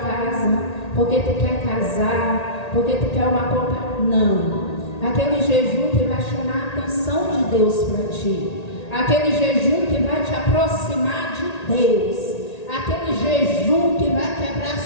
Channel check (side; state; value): right; late; 1.8 ms